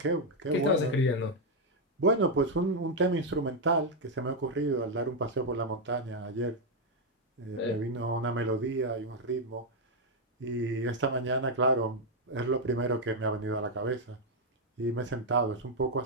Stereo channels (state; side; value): normal; both; correlation 0.01